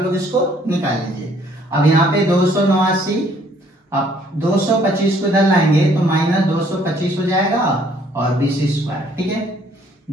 लोग इसको निकाल लीजिए। अब यहाँ पे 289, अब 225 को इधर लाएंगे तो माइनस 225 हो जाएगा और BC स्क्वायर। ठीक है,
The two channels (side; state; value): both; normal; correlation 0.62